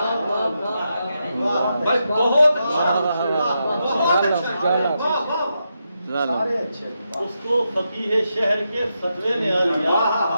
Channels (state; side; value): inverted; both; correlation -0.85